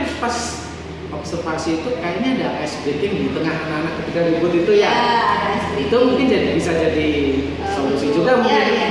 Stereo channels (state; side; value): identical; both; correlation 1.00